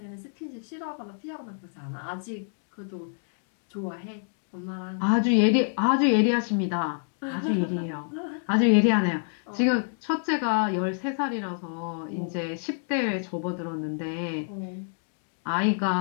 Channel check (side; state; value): right; silent; digital silence